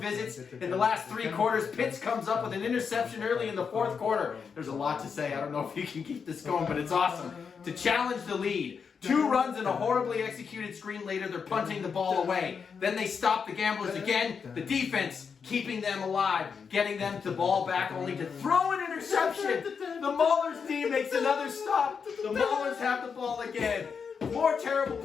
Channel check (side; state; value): right; quieter; 6.1 dB